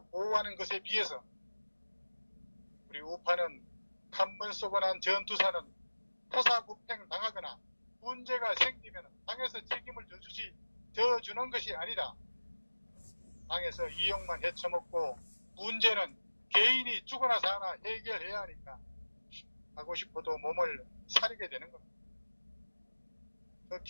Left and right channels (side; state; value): both; inverted; correlation -1.00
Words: 보호하는 것에 비해서 우리 우파는 한 번 쏘고 난 전투사는 토사구팽 당하거나 문제가 생기면 당에서 책임을 져주는 것이 아니라 당에서 이용만 헤쳐먹고 문제는 개인이 죽어나 사나 해결해야 하니까 하고 싶어도 몸을 사리게 되는 겁니다.